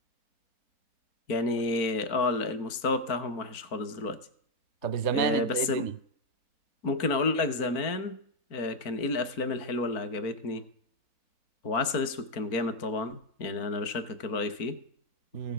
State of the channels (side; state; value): right; late; 4.4 ms